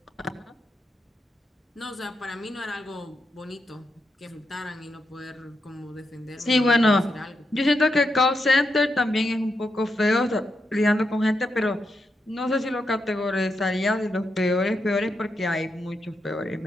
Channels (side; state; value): both; normal; correlation 0.84